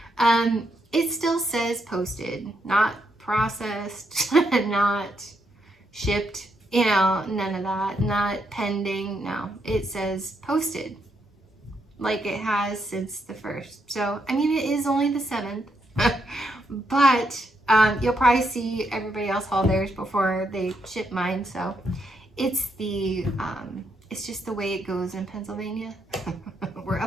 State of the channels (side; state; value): both; normal; correlation 0.79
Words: it still says posted, not processed, not shipped, you know, none of that, not pending, no, it says posted, like it has since the 1st. So, I mean, it is only the 7th, but you'll probably see everybody else haul theirs before they ship mine. So it's it's just the way it goes in Pennsylvania. We're